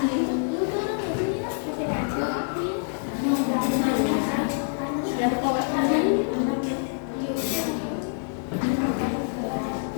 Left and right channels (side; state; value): right; silent; 61 dB below the other